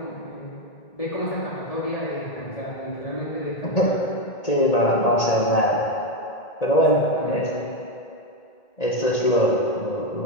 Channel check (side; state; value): right; late; 1.8 ms